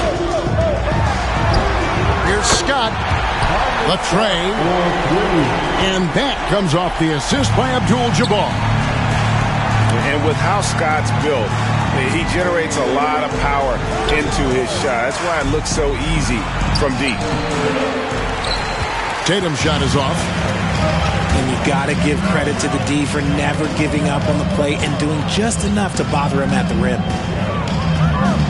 Here's Scott. The tray. And that comes off the assist by Abdul-Jabbar. And with how Scott's built, he generates a lot of power into his shot. That's why it looks so easy from deep. Tatum's shot is off. And you got to give credit to the D for never giving up on the play and doing just enough to bother him at the rim.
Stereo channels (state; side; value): identical; both; correlation 1.00